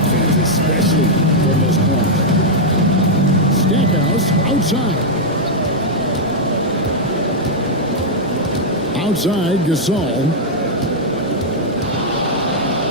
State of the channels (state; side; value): normal; both; correlation -0.04